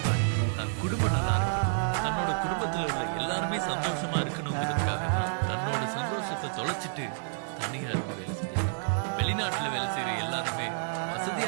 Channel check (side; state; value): left; silent; 58 dB below the other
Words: தன் குடும்பம் நல்லா இருக்கணும், தன்னோட குடும்பத்துல உள்ள எல்லாருமே சந்தோஷமா இருக்கணுங்கிறதுக்காக தான் தன்னோட சந்தோஷத்தை தொலைச்சிட்டு தனியா இருந்து வேலை செஞ்சாங்க. வெளிநாட்டுல வேலை செய்யற எல்லாருமே